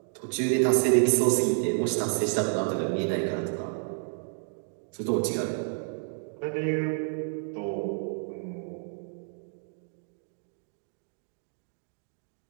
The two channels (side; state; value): left; silent; 58 dB below the other